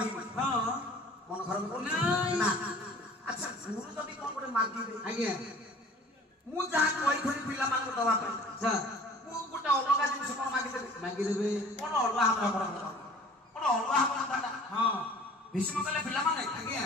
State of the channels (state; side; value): normal; both; correlation 0.48